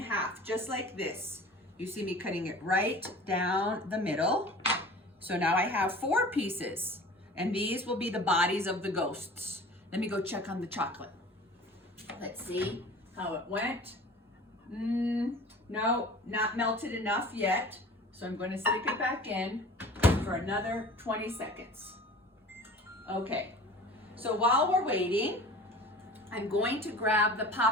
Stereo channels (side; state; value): both; normal; correlation 0.42